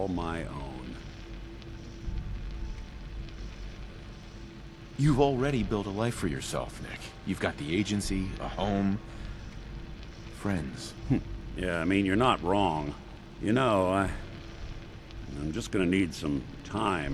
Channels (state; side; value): identical; both; correlation 1.00